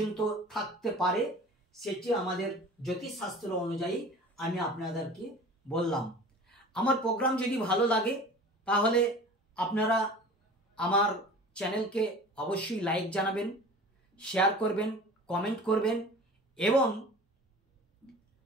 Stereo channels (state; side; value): normal; both; correlation 0.41